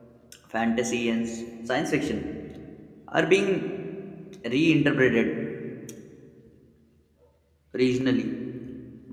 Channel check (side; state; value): both; identical; correlation 1.00